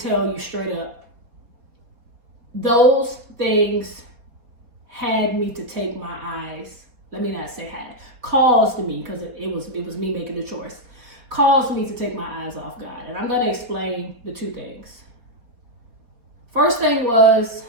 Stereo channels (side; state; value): left; late; 4.4 ms